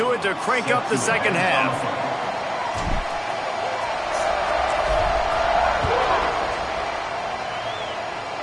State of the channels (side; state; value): both; identical; correlation 1.00